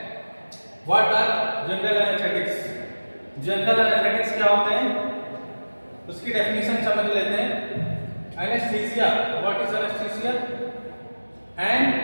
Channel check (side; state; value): both; inverted; correlation -1.00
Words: what are general anesthetics? General anaesthetics क्या होते हैं उसकी डेफिनेशन समझ लेते हैं. Anaesthesia, what is anaesthesia? An